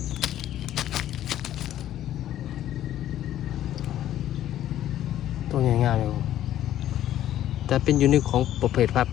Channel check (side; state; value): right; quieter; 12.2 dB